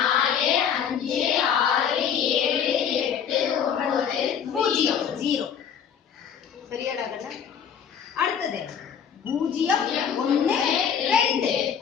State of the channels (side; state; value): right; quieter; 7.9 dB